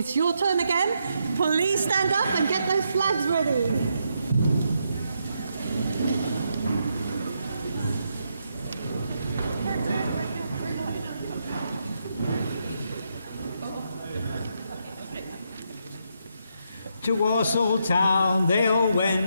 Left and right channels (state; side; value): inverted; both; correlation -0.79